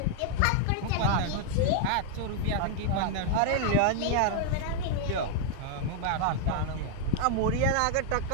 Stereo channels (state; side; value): different; both; correlation 0.00